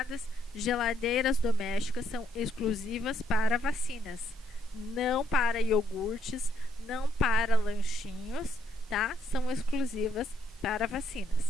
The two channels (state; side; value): normal; both; correlation 0.72